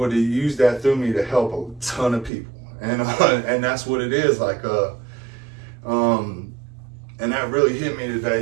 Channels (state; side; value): drops out; left; at 2.3 s